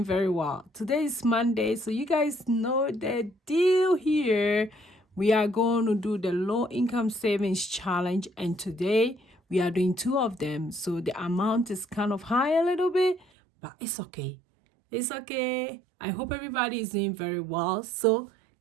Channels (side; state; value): left; drops out; at 13.2 s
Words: very well. Today is Monday, so you guys know the deal here. We are going to do the low income savings challenge, and today we are doing two of them. So the amount is kind of high a little bit, but it's okay. It's okay. I hope everybody is doing very well. So